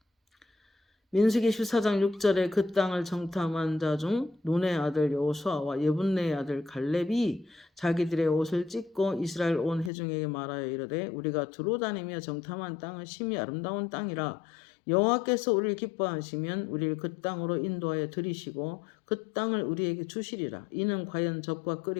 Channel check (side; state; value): right; drops out; at 9.9 s